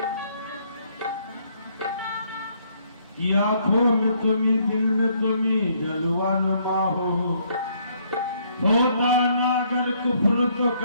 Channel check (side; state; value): both; inverted; correlation -0.68